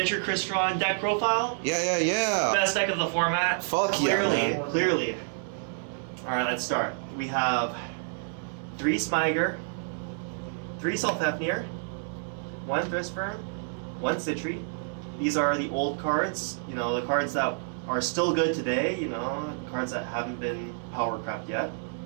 Crystron deck profile. Yeah. Best deck of the format. Fuck clearly, yeah. Clearly. Alright, let's start. We have 3 Smiger, 3 Sulfafnir, 1 Crystron, 1 Citri. These are the old cards, you know, the cards that are still good today, you know, cards that haven't been power crept yet.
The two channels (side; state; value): left; silent; 59 dB below the other